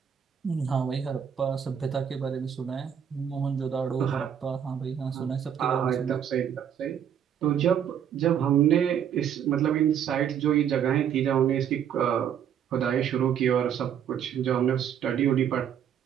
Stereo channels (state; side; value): quieter; left; 8.8 dB